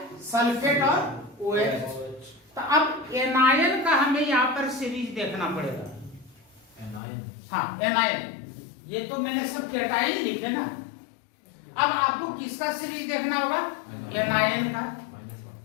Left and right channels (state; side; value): drops out; right; at 7.0 s